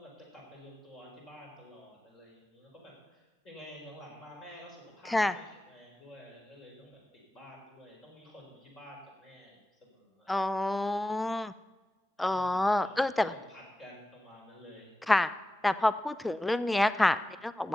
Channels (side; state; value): both; normal; correlation 0.94